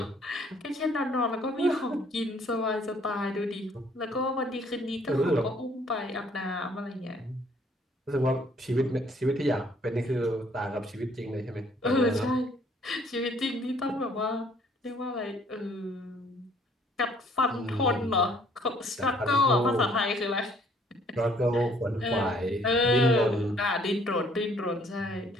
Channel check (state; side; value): normal; both; correlation 0.61